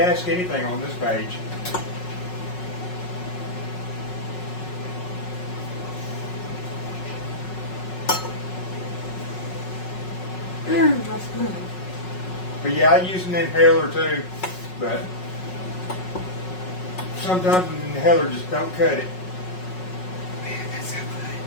ask anything on this page. That's good. But yeah, I use an inhaler too. But sometimes an inhaler just don't cut it. Man, that's so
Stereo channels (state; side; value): late; right; 5.4 ms